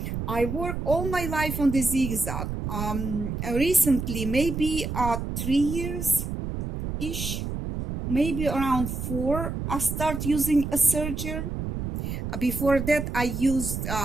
I work all my life on the zigzag. Recently, maybe 3 years-ish, maybe around 4, I start using a serger. Before that, I used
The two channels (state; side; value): noise; right; rumble, 4 dB below the sound